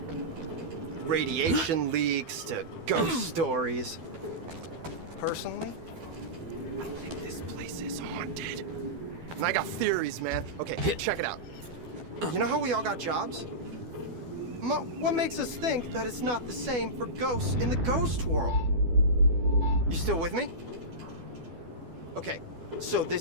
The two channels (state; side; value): late; left; 12 ms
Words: radiation leaks to ghost stories. Personally, I think this place is haunted. And I got theories, man. Okay, check it out. You know how we all got jobs? What makes us think that it's not the same for ghosts in the ghost world? You still with me? Okay, so